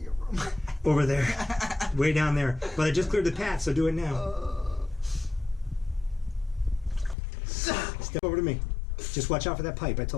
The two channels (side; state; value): right; drops out; at 7.2 s